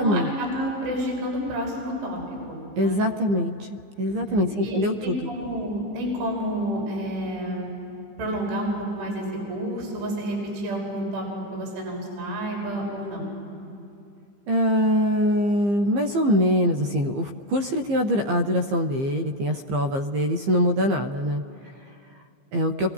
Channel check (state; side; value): late; left; 15 ms